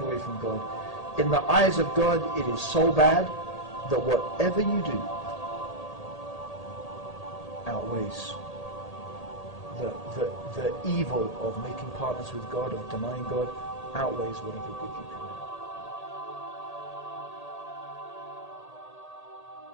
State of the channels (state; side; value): late; right; 1.8 ms